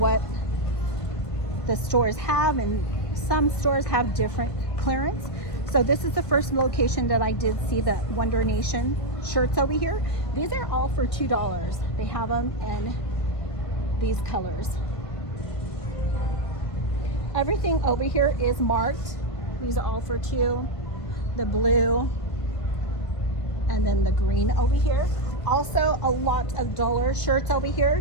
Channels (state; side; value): late; right; 1.5 ms